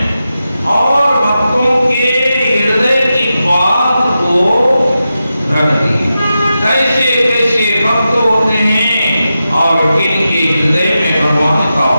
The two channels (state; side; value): inverted; both; correlation -0.90